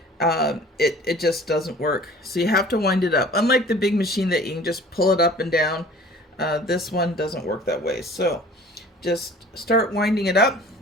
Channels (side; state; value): both; normal; correlation 0.47